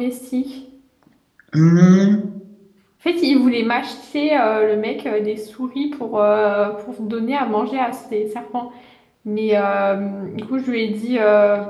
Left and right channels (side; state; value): both; identical; correlation 1.00